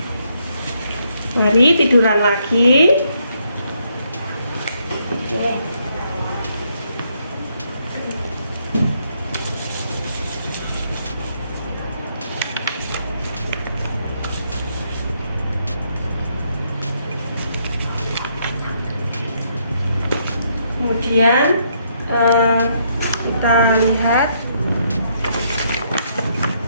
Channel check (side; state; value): both; inverted; correlation -0.74